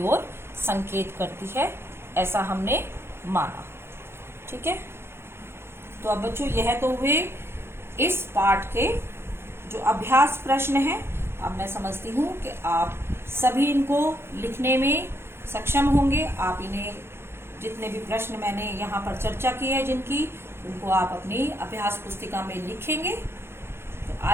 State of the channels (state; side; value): late; left; 0.12 ms